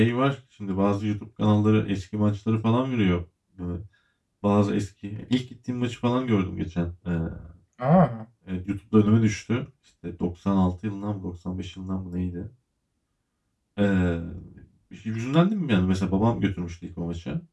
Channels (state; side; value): identical; both; correlation 1.00